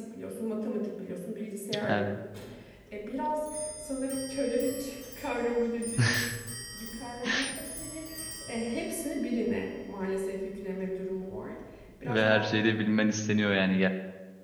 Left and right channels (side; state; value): both; identical; correlation 1.00